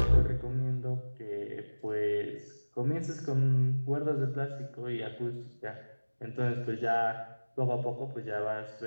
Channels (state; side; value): inverted; both; correlation -1.00